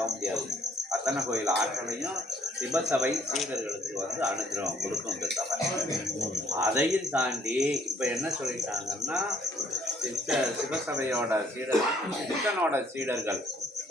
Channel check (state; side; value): normal; both; correlation 0.63